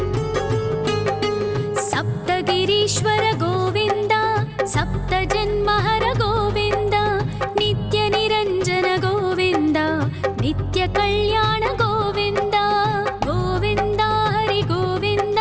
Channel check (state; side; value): identical; both; correlation 1.00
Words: ಸಪ್ತಗಿರೀಶ್ವರ ಗೋವಿಂದ, ಸಪ್ತ ಜನ್ಮಹರ ಗೋವಿಂದ, ನಿತ್ಯ ನಿರಂಜನ ಗೋವಿಂದ, ನಿತ್ಯ ಕಲ್ಯಾಣ ಗೋವಿಂದ. ಗೋವಿಂದ ಹರಿ ಗೋವಿಂದ,